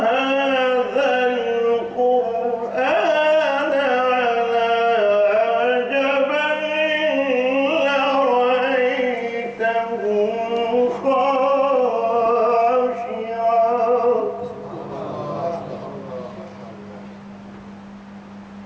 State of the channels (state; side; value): identical; both; correlation 1.00